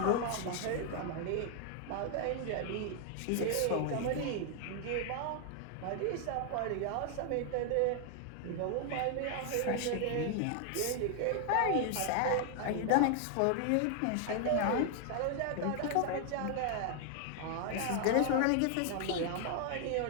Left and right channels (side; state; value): both; different; correlation 0.00